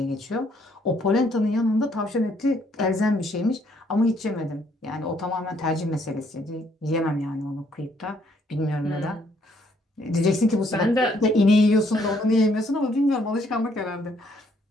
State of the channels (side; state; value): both; normal; correlation 0.68